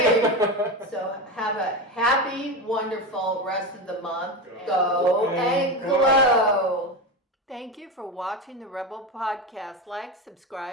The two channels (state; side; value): normal; both; correlation 0.20